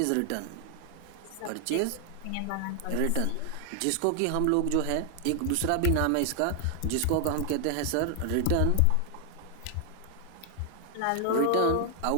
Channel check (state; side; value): different; both; correlation 0.00